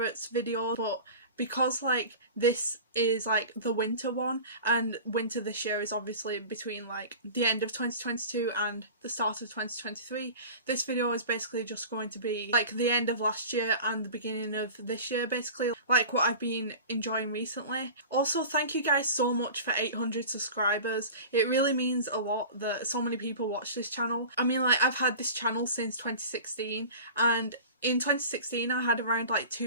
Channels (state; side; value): inverted; both; correlation -0.36